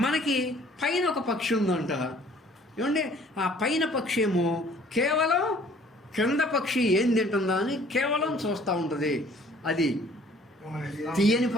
మనకి పైన ఒక పక్షి ఉందంట ఏమంటే, ఆ పైన పక్షి ఏమో కేవలం క్రింద పక్షి ఏం తింటుందా అని కేవలం చూస్తూ ఉంటుంది. అది తీయని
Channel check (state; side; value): normal; both; correlation 0.55